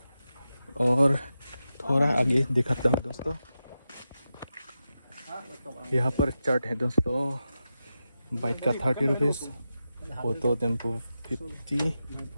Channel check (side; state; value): both; inverted; correlation -0.90